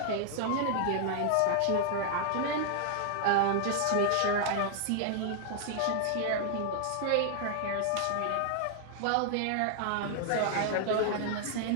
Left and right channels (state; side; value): different; both; correlation 0.00